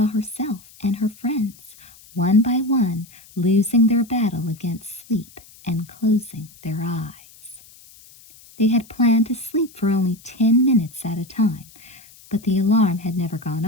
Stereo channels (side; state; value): left; noise; hiss, 24 dB below the sound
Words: herself and her friends, one by one, losing their battle against sleep and closing their eyes. They had planned to sleep for only 10 minutes at a time, but the alarm had never gone